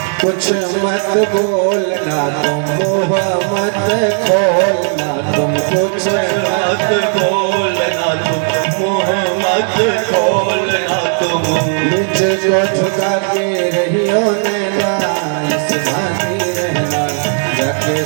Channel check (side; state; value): left; silent; 56 dB below the other